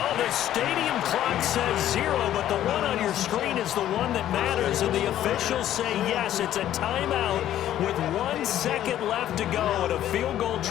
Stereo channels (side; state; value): right; quieter; 12.1 dB